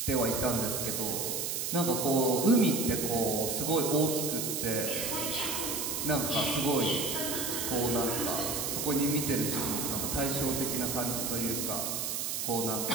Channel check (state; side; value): noise; right; hiss, 1 dB below the sound